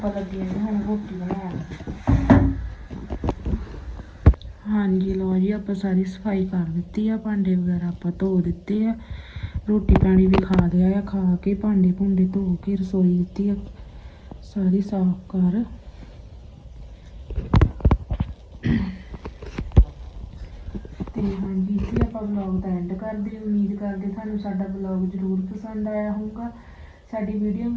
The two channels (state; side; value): identical; both; correlation 1.00